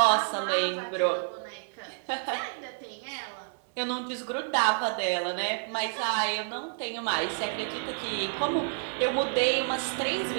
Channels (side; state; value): left; silent; 58 dB below the other